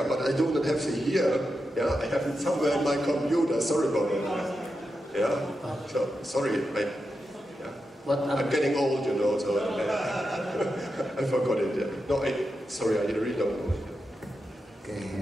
but I do not have it here. Yeah, I have it somewhere in my computer. Sorry about that. Yeah, so sorry. I'm getting old, you know, so I forgot it. Yeah. No, sorry, I really don't know it.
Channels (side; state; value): both; normal; correlation 0.88